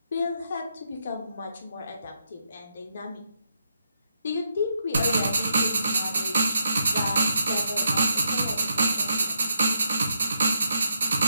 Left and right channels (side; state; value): both; inverted; correlation -0.80